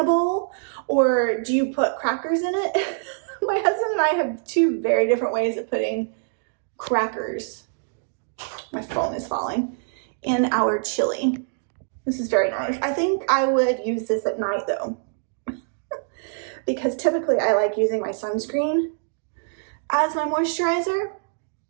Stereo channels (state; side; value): silent; left; digital silence